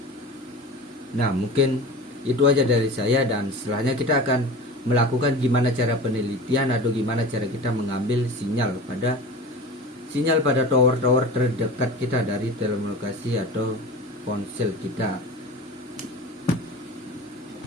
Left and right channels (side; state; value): both; normal; correlation 0.34